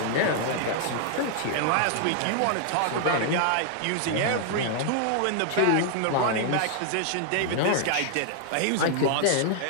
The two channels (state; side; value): different; both; correlation 0.00